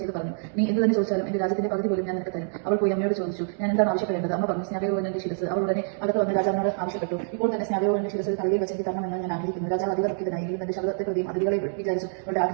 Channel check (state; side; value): silent; left; digital silence